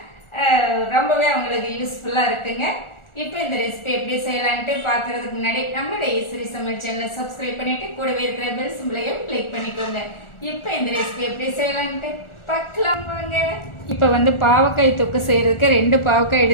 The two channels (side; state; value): right; late; 1.4 ms